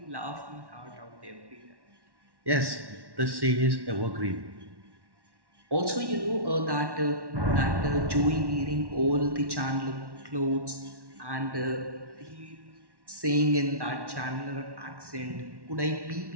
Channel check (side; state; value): left; late; 1.1 ms